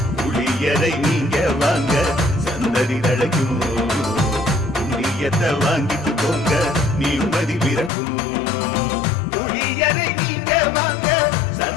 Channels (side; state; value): right; drops out; at 7.9 s